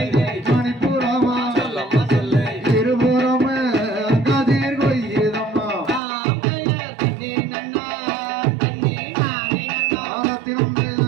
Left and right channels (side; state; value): left; drops out; at 6.0 s